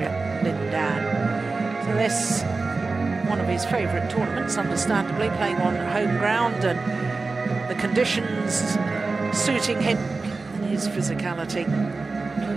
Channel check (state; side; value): quieter; left; 3.9 dB